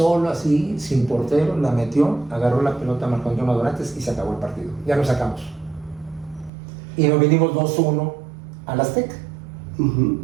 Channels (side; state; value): left; drops out; at 6.5 s